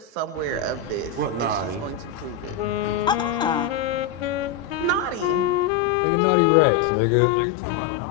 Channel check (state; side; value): drops out; right; at 5.7 s